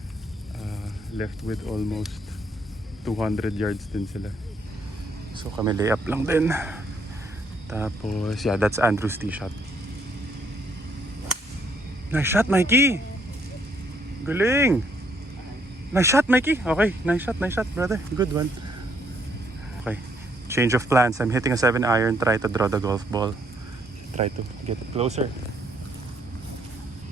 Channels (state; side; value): normal; both; correlation 0.70